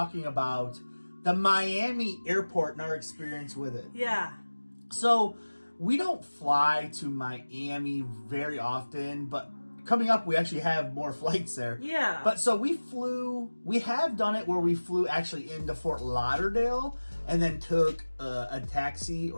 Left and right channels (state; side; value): inverted; both; correlation -1.00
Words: about the Miami airport and our experience with it. Yeah. So, we don't fly to Miami very often, but coming up we actually have more flights there. Yeah. But so we have done it where we flew actually into Fort Lauderdale and then took a taxi